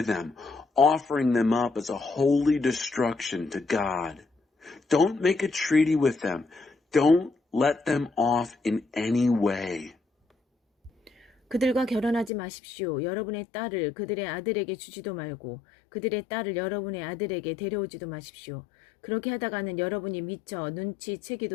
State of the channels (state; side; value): drops out; right; at 12.3 s